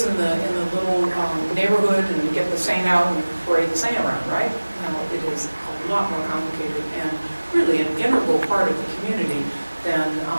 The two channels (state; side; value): inverted; both; correlation -1.00